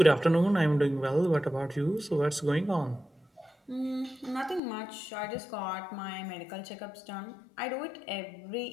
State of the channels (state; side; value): drops out; right; at 4.6 s